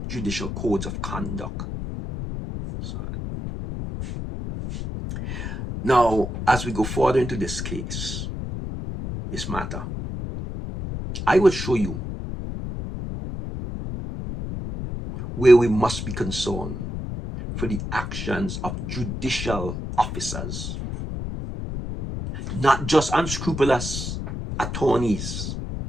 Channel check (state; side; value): noise; left; rumble, 6 dB below the sound